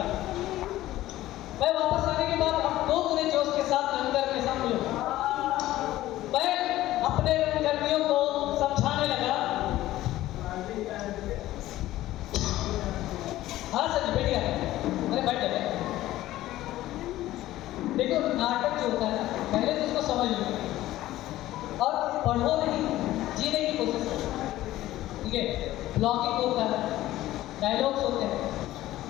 मैं वापस आने के बाद अब दो गुने जोश के साथ रंगकर के साथ मिलूं। मैं अपने रंगकर्मियों को समझाने लगा। हाँ सर बैठ गया, अरे बैठ गए। देखो नाटक जो होता है पहले तो उसको समझ लो और पढ़ो नहीं, जीने की कोशिश करो, ठीक है। ब्लॉगिंग होता है, डायलॉग्स होते हैं,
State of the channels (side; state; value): right; quieter; 15.3 dB